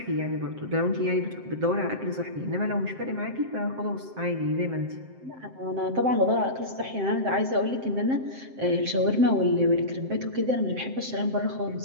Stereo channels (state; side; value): late; left; 7.6 ms